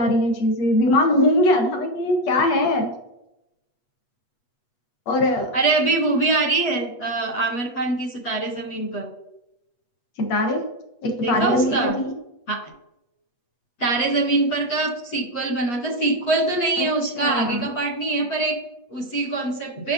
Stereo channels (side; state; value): right; late; 8.3 ms